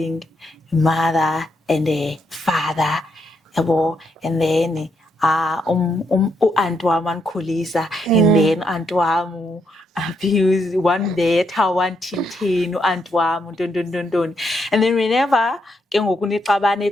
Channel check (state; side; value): normal; both; correlation 0.78